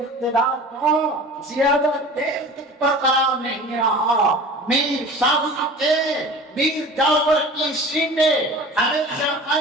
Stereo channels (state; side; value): normal; both; correlation 0.40